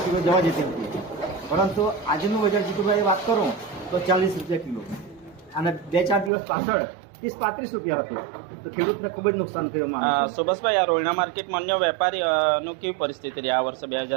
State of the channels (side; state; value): left; drops out; at 6.3 s